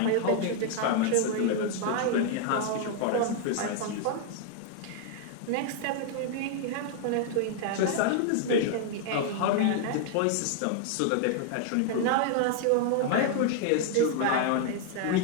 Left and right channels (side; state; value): both; different; correlation 0.00